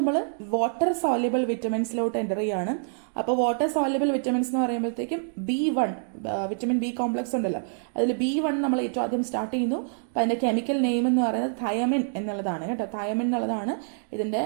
വാട്ടർ സോല്യുബിൾ വിറ്റമിൻസിലോട്ട് എൻ്റർ ചെയ്യാണ്. അപ്പോൾ വാട്ടർ സോല്യുബിൾ വിറ്റമിൻസ് എന്ന് പറയുമ്പോഴത്തേക്കും B1 വിറ്റമിൻ ബി കോംപ്ലക്സ് ഉണ്ടല്ലോ, അതിൽ B1 നമ്മൾ ഏറ്റവും ആദ്യം സ്റ്റാർട്ട് ചെയ്യുന്നു. അപ്പം അതിൻ്റെ കെമിക്കൽ നെയിം എന്ന് പറയുന്നത് തയമിൻ എന്നുള്ളതാണ് കേട്ടോ. തയമിൻ എന്നുള്ളതാണ് ഇതിൻ്റെ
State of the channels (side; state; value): left; silent; digital silence